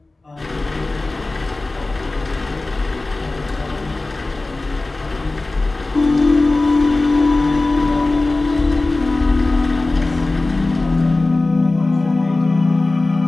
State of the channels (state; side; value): quieter; right; 3.1 dB